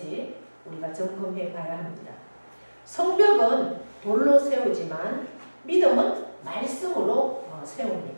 우리가 점검해 봐야 합니다. 성벽은 돌로 세우지만 믿음은 말씀으로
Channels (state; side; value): inverted; both; correlation -1.00